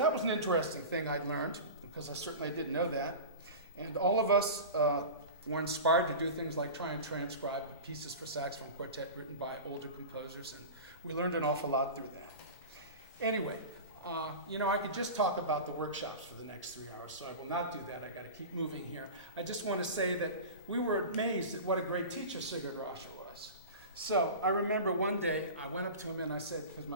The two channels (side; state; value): both; inverted; correlation -0.31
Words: was an interesting thing I'd learned, because I certainly didn't know that. And all of us were inspired to do things like try and transcribe pieces for saxophone quartet written by older composers, and we learned an awful lot through that. Anyway, I could just talk about the workshops for the next 3 hours, so I will not do that. I got to keep moving here. I just want to say that we were amazed at what a great teacher Sigurd Raschèr was. So I remember one day I went up to him and I said, because